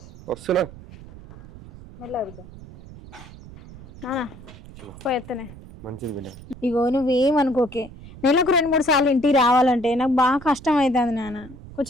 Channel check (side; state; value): right; noise; rumble, 18 dB below the sound